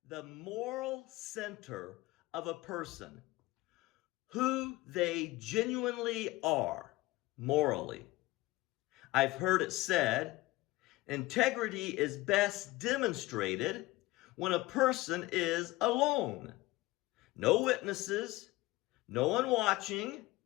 the moral center of a person, who they genuinely are morally. I've heard it said, integrity is best demonstrated when a person is alone. No witnesses, no one watching,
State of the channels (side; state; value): right; quieter; 19.5 dB